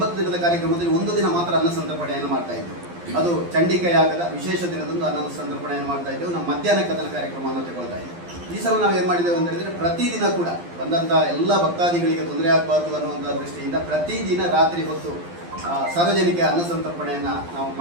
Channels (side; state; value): left; late; 12 ms